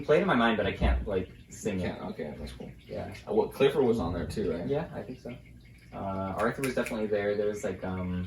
play it in my mind, but I can't like sing it. Okay, that's cool. Yeah. Well, Clifford was on there too, right? Yeah, I think so. Arthur was definitely there. There was like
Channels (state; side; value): identical; both; correlation 1.00